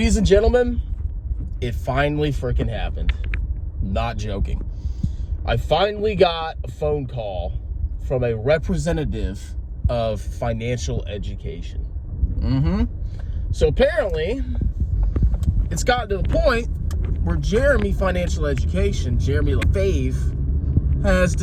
and gentlemen, it finally freaking happened. Not joking. I finally got a phone call from a representative of financial education. So apparently, it's gotten to the point where Jeremy Financial Education, Jeremy LaFave, has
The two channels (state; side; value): identical; both; correlation 1.00